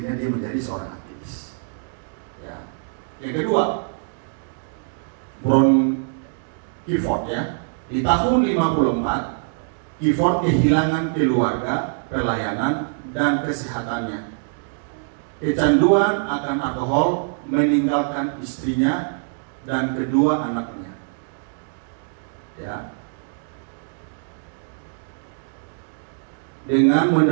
dia menjadi seorang aktivis. Ya. Yang kedua, Brown Clifford ya. Di tahun 54, Clifford kehilangan keluarga, pelayanan, dan kesehatannya. Kecanduan akan alkohol meninggalkan istrinya dan kedua anaknya. Ya. Dengan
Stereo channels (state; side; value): silent; left; digital silence